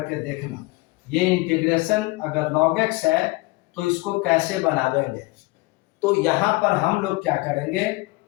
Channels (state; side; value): quieter; right; 22.8 dB